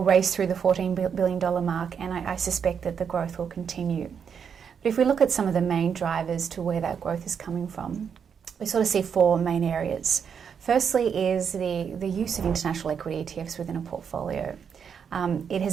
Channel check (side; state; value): left; quieter; 7.1 dB